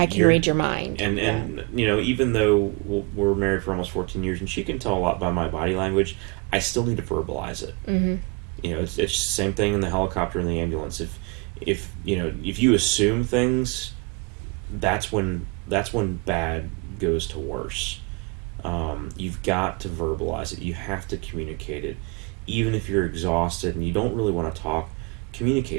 can read your mind. And even though we're married for almost 14 years and she can tell a lot by my body language, I still need to verbalize it. Mm-hmm. It's the same thing in the helicopter and the ambulance. If you assume things, that's when bad goes to worse. You've got to verbalize it. You have to communicate it. Even if you're exhausted and you don't really want to talk,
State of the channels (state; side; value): quieter; left; 29.5 dB